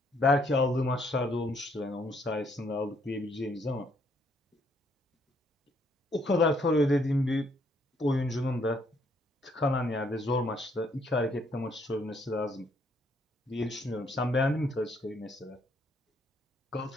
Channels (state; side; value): normal; both; correlation 0.69